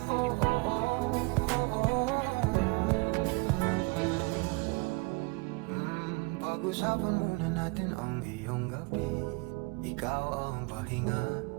Pag-usapan muna natin ang iyong gabi. Ikaw ang pahinga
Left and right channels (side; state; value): left; quieter; 28.9 dB